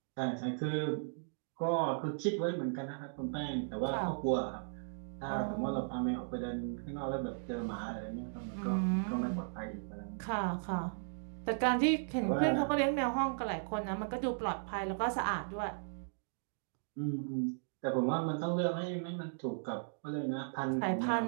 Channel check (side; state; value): left; silent; digital silence